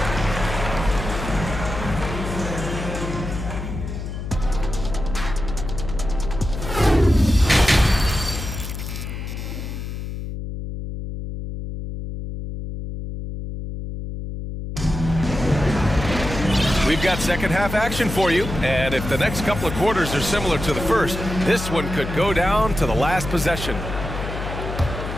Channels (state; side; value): noise; left; hum, 6 dB below the sound